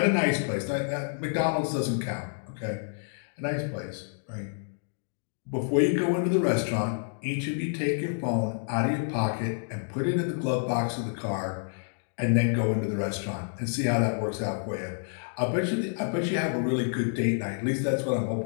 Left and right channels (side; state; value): right; silent; digital silence